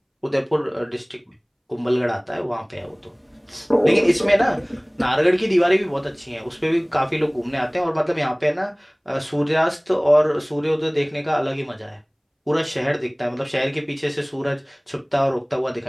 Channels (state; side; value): identical; both; correlation 1.00